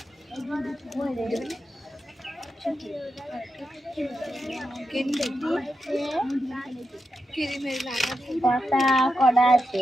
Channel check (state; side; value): normal; both; correlation 0.87